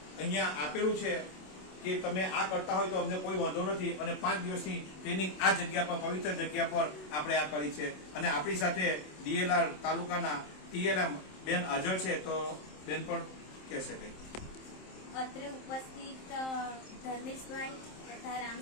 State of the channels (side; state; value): right; late; 27 ms